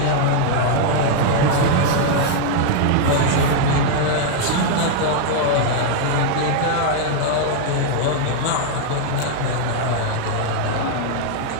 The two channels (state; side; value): different; both; correlation 0.00